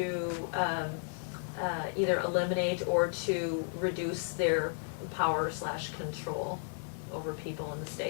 either eliminate or to reduce their power / control over people in the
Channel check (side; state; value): right; silent; digital silence